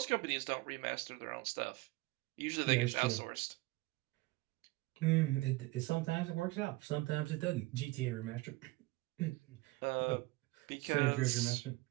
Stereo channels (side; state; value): left; quieter; 21.3 dB